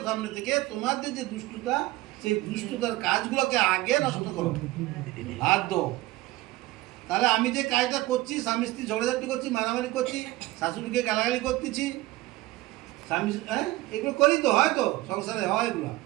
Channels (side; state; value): left; quieter; 18.4 dB